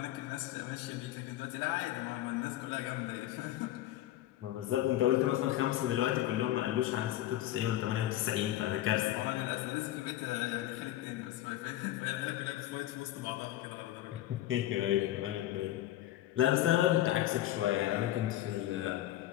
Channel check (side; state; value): right; quieter; 14.0 dB